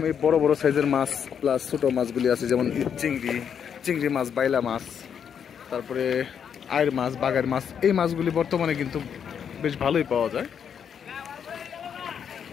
এই বড় বড় সাইজের মাছ প্লাস ছোট মাছগুলি আছে, যেমন চিংড়ি মাছ, বাইলা মাছ, তারপরে আয়ের মাছ, বাগার মাছ। এই মাছগুলি বর্তমানে কিন্তু বেশ ভালোই পাওয়া যায়।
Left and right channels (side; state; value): right; quieter; 7.8 dB